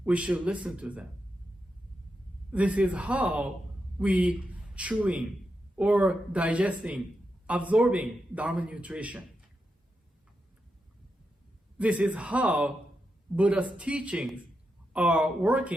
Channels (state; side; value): normal; both; correlation 0.86